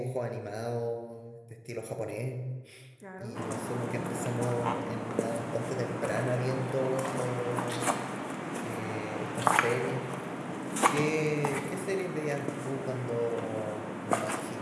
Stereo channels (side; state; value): both; identical; correlation 1.00